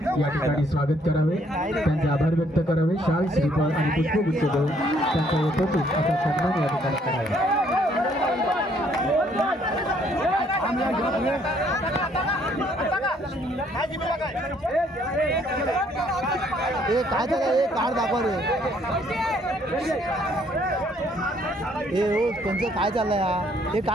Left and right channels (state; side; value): normal; both; correlation 0.65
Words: या ठिकाणी स्वागत करावे, त्यांचे आभार व्यक्त करावे, शाल श्रीफळ आणि पुष्पगुच्छ देऊन त्यांचा यथोचित असा सन्मान या ठिकाणी करावा. काय झालं कार्ड दाखवा रे. हो त्यांचं काय चाललंय हा, हे